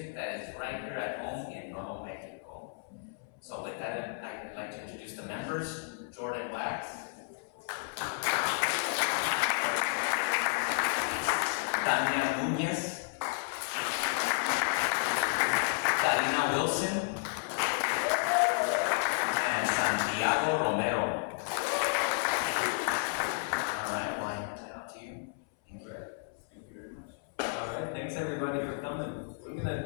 that is right here at home in Nuevo Mexico. So with that, I'd like to introduce the members. Jordan Wax, Tania Núñez, Karina Wilson, and Santiago Romero. All right, well, I hand it out to you. Thank you. Thank you very much. All right, thanks everybody for coming. We're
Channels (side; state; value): right; silent; 56 dB below the other